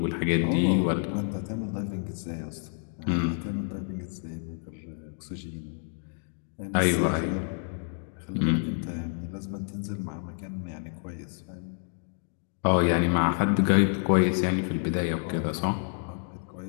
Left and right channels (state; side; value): silent; right; 59 dB below the other